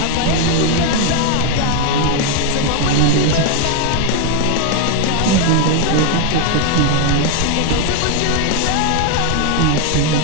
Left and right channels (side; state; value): both; different; correlation 0.01